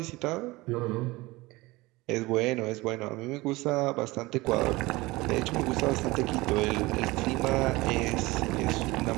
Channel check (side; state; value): left; quieter; 21.3 dB